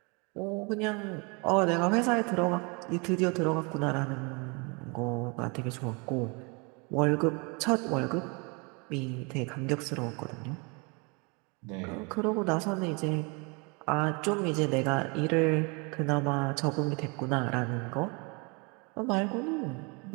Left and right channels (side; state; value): left; quieter; 31.1 dB